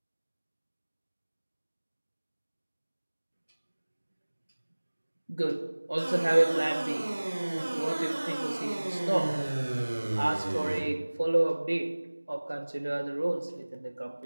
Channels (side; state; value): both; inverted; correlation -1.00